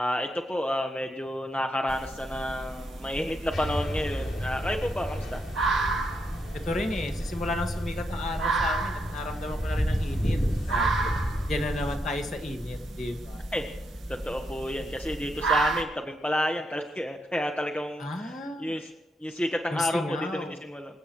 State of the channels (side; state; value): both; normal; correlation 0.81